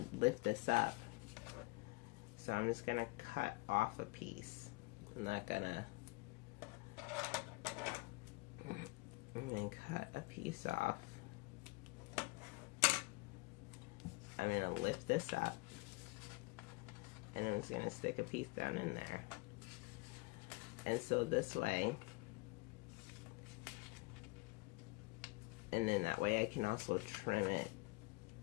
lift this up. So I'm just gonna cut off a piece. I'm not gonna, I'm gonna cut a piece off. I'm going to lift this up, and I'm just going to stick a piece down in there. And so this way, and then that way I can also trim it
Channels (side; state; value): right; quieter; 25.4 dB